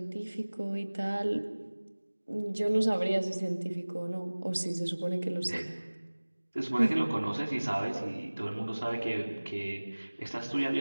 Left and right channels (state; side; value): inverted; both; correlation -1.00